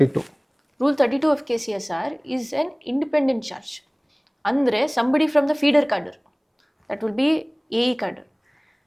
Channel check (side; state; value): both; identical; correlation 1.00